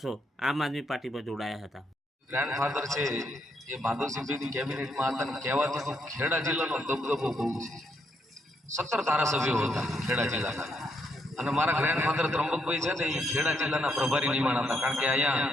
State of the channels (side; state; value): both; normal; correlation 0.76